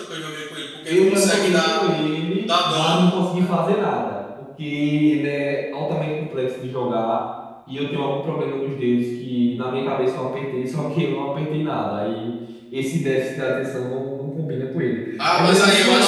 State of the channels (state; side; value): identical; both; correlation 1.00